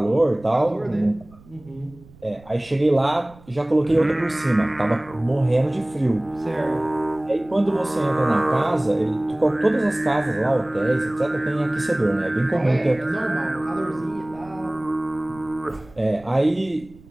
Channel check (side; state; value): right; noise; rumble, 24 dB below the sound